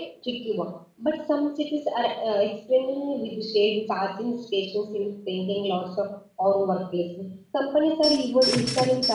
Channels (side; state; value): both; identical; correlation 1.00